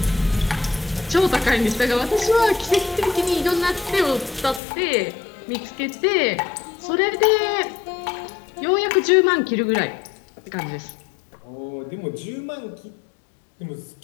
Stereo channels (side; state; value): right; drops out; at 4.6 s